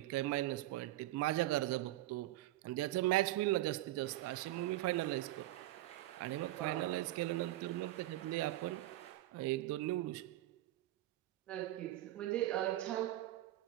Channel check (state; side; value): quieter; left; 16.0 dB